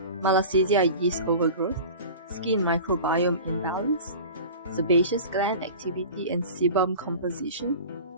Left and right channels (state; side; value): inverted; both; correlation -0.36